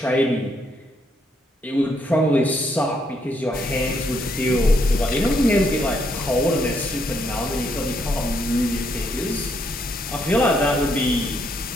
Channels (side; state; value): both; normal; correlation 0.74